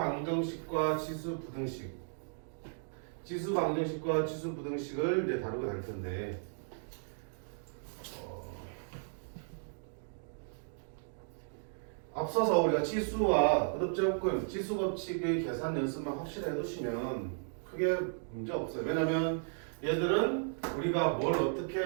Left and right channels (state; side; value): silent; left; digital silence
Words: 지수 부등식. 지수 방정식과 지수 부등식을 이제 다루게 될 텐데. 앞서서 우리가 지수와 거듭제곱근, 지수 법칙의 계산 연습만 확실히 해두시면 크게 문제 없어요. 왜냐면 얘들은 우리가 뭘 어떻게